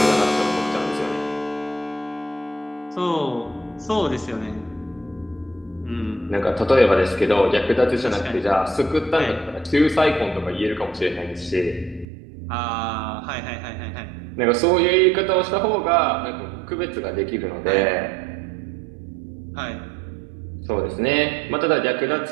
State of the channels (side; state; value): left; drops out; at 12.1 s